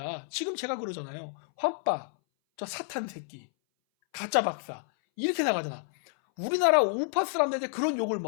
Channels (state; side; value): silent; right; 58 dB below the other